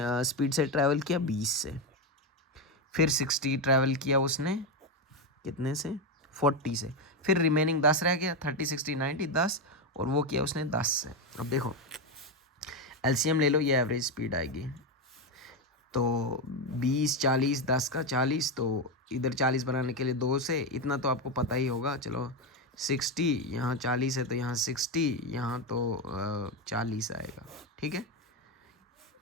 स्पीड से ट्रैवल किया, 20 से। फिर 60 ट्रैवल किया उसने कितने से, 40 से। फिर रिमेनिंग 10 रह गया, 30, 60, 90, 10, और वो किया उसने 10 से। अब देखो एलसीएम ले लो, ये एवरेज स्पीड आएगी, तो 20, 40, 10 का 40, तो इधर 40 बनाने के लिए 2 से, इतना तो आपको पता ही होगा। चलो 60, यहाँ 40 है तो यहाँ 60, यहाँ तो 40 आएगा, ठीक है,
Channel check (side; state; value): both; normal; correlation 0.10